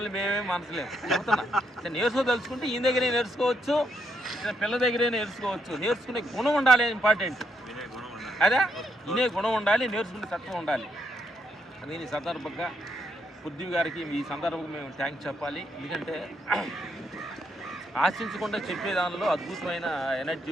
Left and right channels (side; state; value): both; normal; correlation 0.77